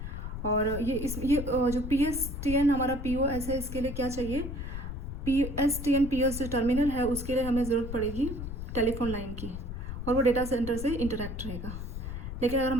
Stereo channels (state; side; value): noise; left; rumble, 6 dB below the sound